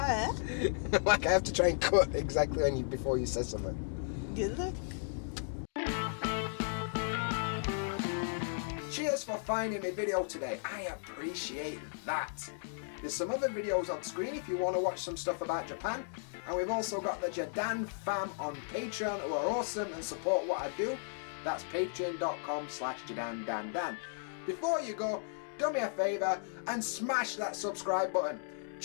Like, I have to try and cut exactly when before you say something. Good luck. Cheers for finding my video today. I appreciate that. There's some other videos on screen if you want to watch some stuff about Japan. And we've also got the JaDanFam on Patreon, who are awesome and support what I do. That's patreon.com/JaDanDanDan. Before you go, do me a favour and smash that subscribe button.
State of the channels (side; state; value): right; silent; digital silence